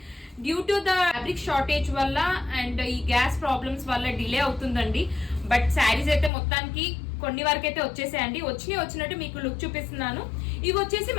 Due to the fabric shortage వల్ల అండ్ ఈ గ్యాస్ ప్రాబ్లమ్స్ వల్ల డిలే అవుతుందండి. బట్ శారీస్ అయితే మొత్తానికి కొన్ని వరకు అయితే వచ్చేసాయండి. వచ్చినట్టు మీకు లుక్ చూపిస్తున్నాను. ఇవి వచ్చేసి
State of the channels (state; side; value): drops out; right; at 6.3 s